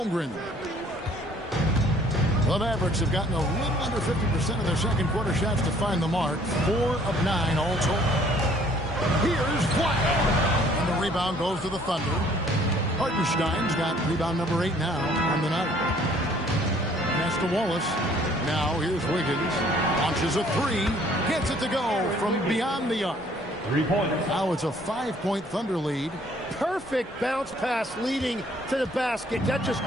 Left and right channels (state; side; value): normal; both; correlation 0.59